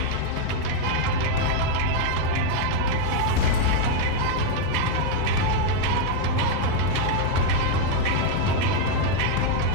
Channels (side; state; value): both; different; correlation 0.01